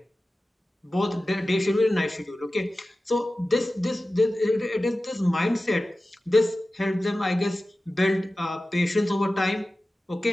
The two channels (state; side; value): normal; both; correlation 0.95